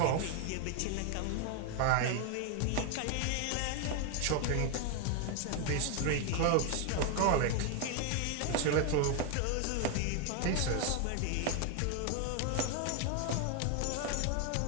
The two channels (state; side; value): different; both; correlation 0.01